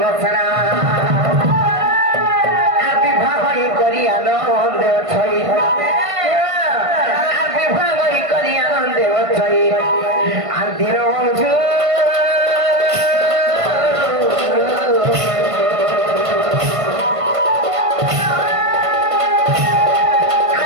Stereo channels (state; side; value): late; left; 1.5 ms